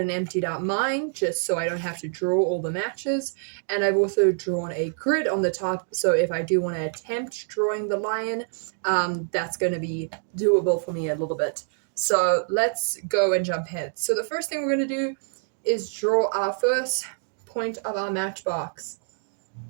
emptied out mine just so I don't have to draw all the matches. And I've also drawn a grid on the top, so if I do want to attempt drawing the lion, that's going to be doable for me a little bit. So let's go and jump ahead. So the first thing we're going to do is draw our first point of our matchbox.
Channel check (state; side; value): silent; left; 61 dB below the other